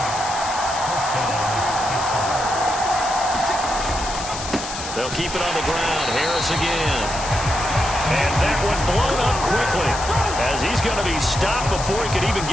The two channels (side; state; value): left; noise; hiss, 8 dB below the sound